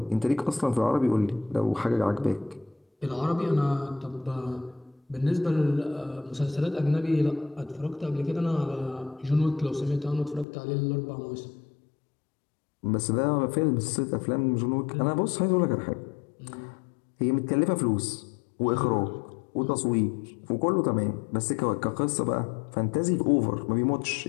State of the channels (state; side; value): drops out; right; at 10.5 s